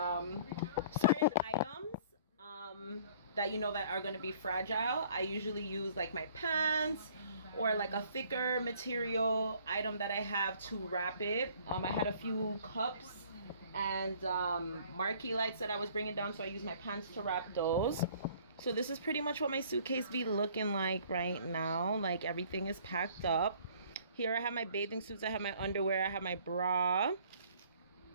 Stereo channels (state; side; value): inverted; both; correlation -0.56